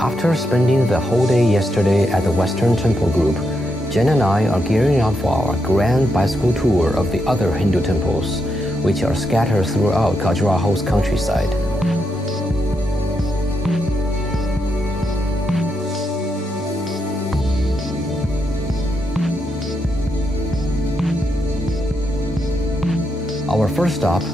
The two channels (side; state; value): both; normal; correlation 0.82